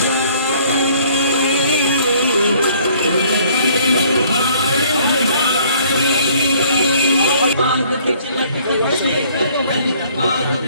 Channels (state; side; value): inverted; both; correlation -0.59